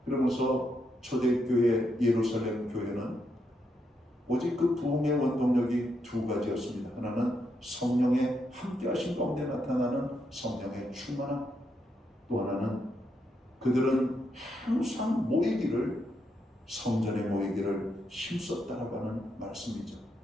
그러면서 초대교회 예루살렘 교회는 오직 그 부흥의 원동력이 두 가지였습니다. 하나는 성령의 함께하신 가운데 나타나는 성령의 충만함, 또 하나는 그들은 항상 모이기를 성전에 모이기를 힘썼다라고 하는 말씀이죠.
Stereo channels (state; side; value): normal; both; correlation 0.80